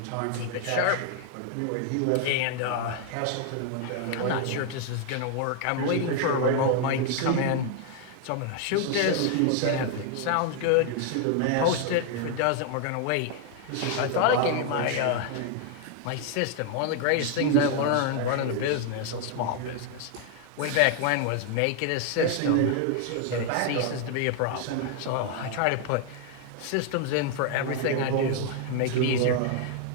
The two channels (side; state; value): both; different; correlation 0.00